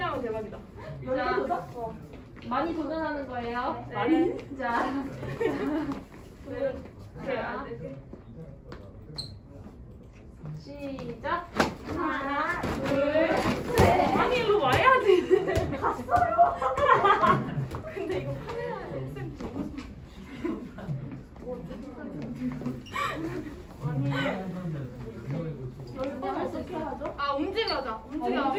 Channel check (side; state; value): both; identical; correlation 1.00